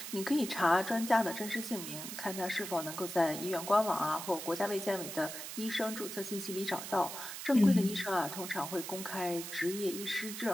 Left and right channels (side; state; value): right; noise; hiss, 8 dB below the sound